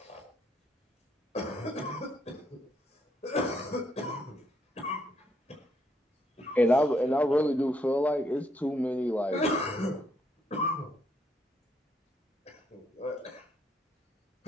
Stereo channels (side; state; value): both; normal; correlation 0.74